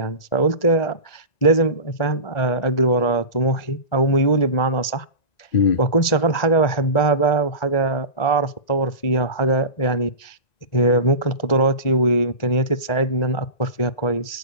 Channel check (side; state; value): right; late; 1.9 ms